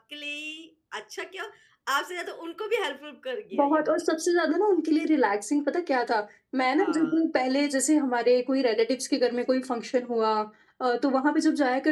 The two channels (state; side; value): identical; both; correlation 1.00